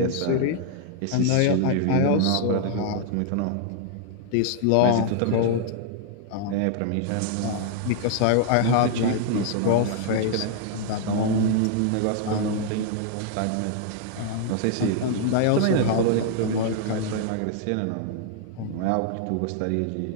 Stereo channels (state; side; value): different; both; correlation -0.01